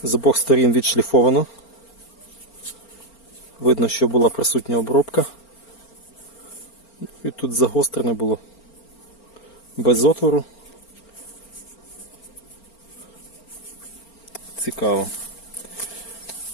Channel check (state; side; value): late; right; 4.4 ms